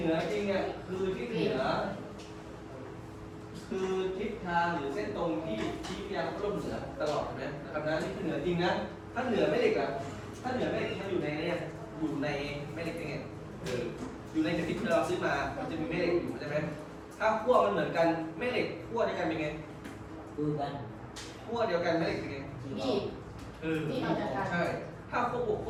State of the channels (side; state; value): both; identical; correlation 1.00